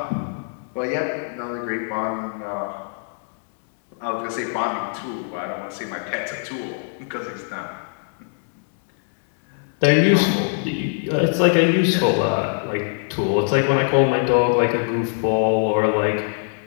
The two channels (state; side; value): silent; right; digital silence